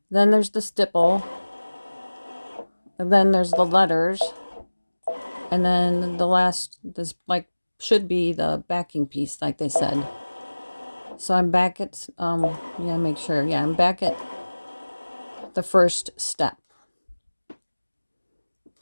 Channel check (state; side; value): inverted; both; correlation -1.00